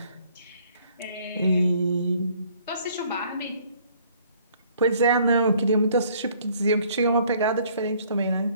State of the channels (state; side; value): inverted; both; correlation -0.60